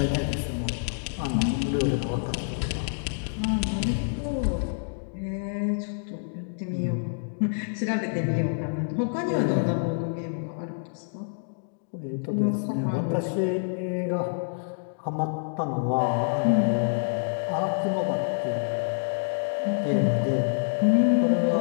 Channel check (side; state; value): right; silent; digital silence